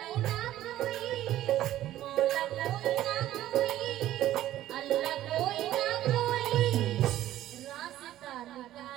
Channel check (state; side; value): quieter; left; 13.6 dB